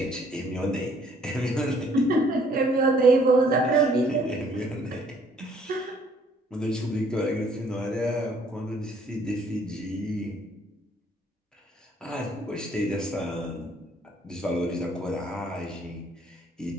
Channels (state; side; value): normal; both; correlation 0.61